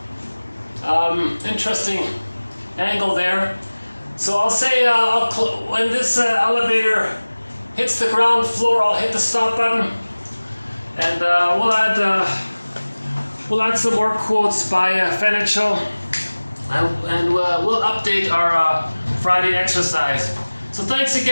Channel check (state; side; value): inverted; both; correlation -1.00